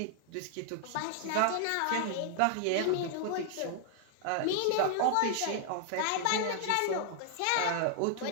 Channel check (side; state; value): both; different; correlation 0.00